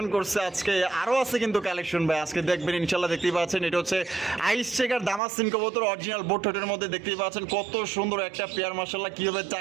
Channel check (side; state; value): left; drops out; at 5.2 s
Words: করছে। আজকে আরো আছে কিন্তু কালেকশন ভাই, আজকে দেখবেন ইনশাআল্লাহ। দেখতেই পাচ্ছেন, এটা হচ্ছে আইস চেকার দামাসিন কবুতর, অরিজিনাল বোট ঠোঁটের মধ্যে। দেখতেই পাচ্ছেন কত সুন্দর একটা পেয়ার, মাশাআল্লাহ, কিভাবে